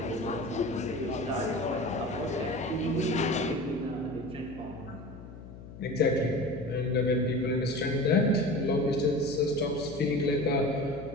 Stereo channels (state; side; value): noise; left; hum, 15 dB below the sound